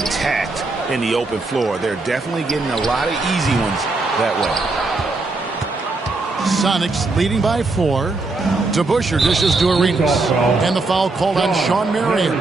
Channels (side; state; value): left; quieter; 3.4 dB